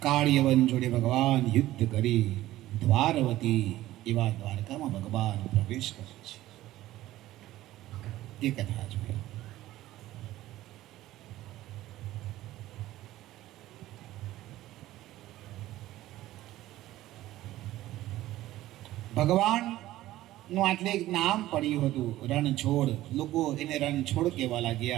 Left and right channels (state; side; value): quieter; left; 15.4 dB